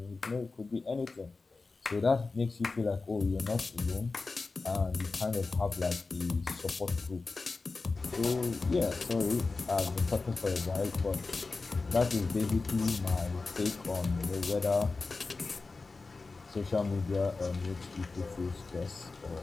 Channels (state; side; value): quieter; right; 3.9 dB